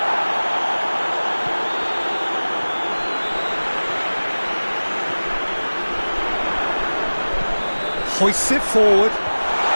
Hoists it forward.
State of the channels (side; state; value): both; inverted; correlation -1.00